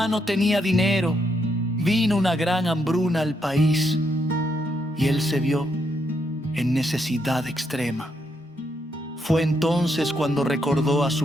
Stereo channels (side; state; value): both; normal; correlation 0.77